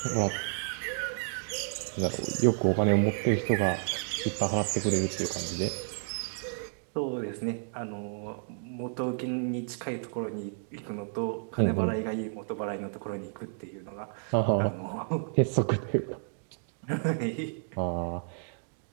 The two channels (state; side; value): silent; left; digital silence